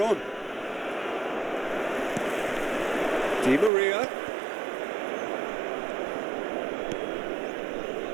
on. Di Maria.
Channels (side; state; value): left; drops out; at 3.7 s